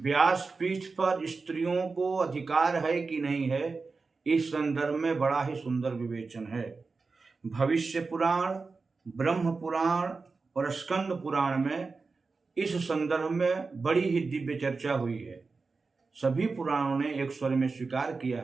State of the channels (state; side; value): quieter; left; 4.2 dB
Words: पर स्त्रियों को अधिकार है कि नहीं है, इस संदर्भ में बड़ा ही सुंदर विवेचन है। भविष्य पुराण, ब्रह्म पुराण और स्कंद पुराण में इस संदर्भ में बड़ी ही दिव्य चर्चा हुई है। सभी पुराणों ने एक स्वर में स्वीकार किया